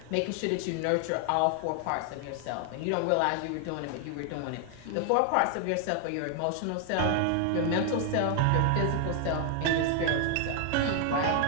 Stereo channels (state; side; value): different; both; correlation 0.00